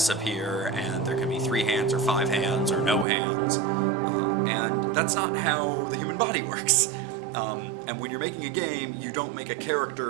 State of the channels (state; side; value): drops out; left; at 3.1 s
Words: and there can be 3 hands or 5 hands or no hands, and that's not how the human body works. And when you're making a game, you don't make a